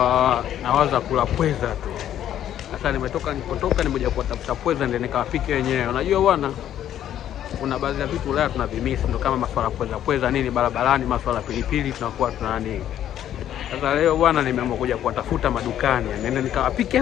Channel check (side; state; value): right; quieter; 11.0 dB